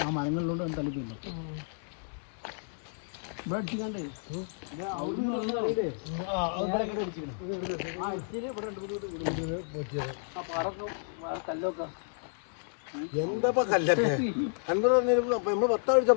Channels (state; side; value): silent; right; digital silence